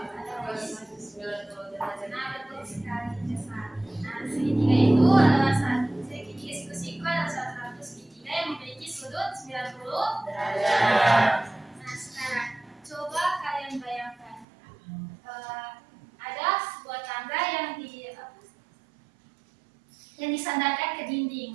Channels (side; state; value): left; drops out; at 14.5 s